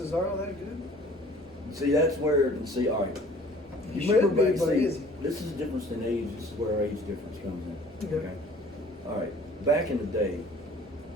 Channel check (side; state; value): both; normal; correlation 0.51